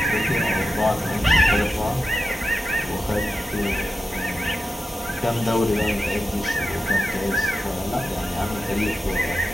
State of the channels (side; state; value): both; normal; correlation 0.90